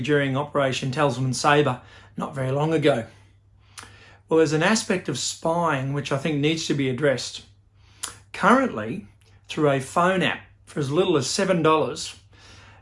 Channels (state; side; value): identical; both; correlation 1.00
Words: during Operation Tasman Sabre not very long ago. Well, there's an aspect of spying which I think needs to be addressed. Currently, through a phone app for as little as $7,